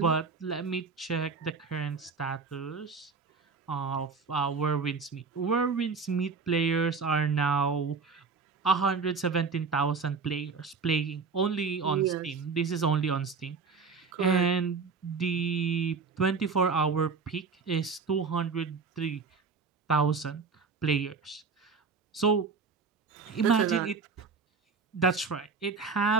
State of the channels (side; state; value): left; quieter; 4.9 dB